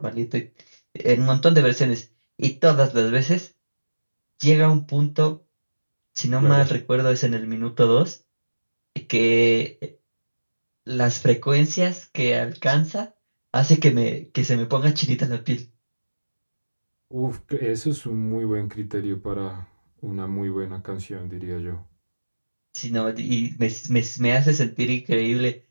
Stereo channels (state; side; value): inverted; both; correlation -1.00